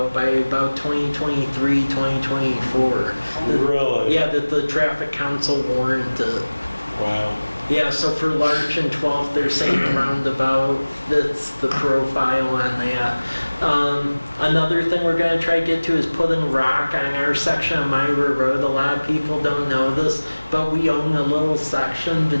by about 2023, 2024. Really? Yeah, that the traffic council warranted. Wow. Yeah, so for Larch and 12th, they're saying the roundabout fits the profile on that. Another thing we're going to try to get to is putting rock on our section of Myra Road. A lot of people don't know this, but we own a little section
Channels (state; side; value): inverted; both; correlation -1.00